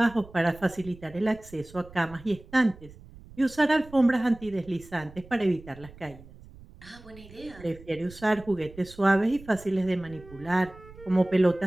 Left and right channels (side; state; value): right; noise; rumble, 20 dB below the sound